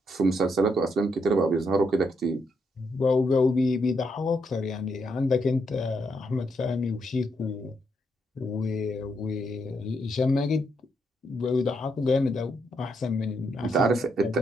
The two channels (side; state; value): both; normal; correlation 0.78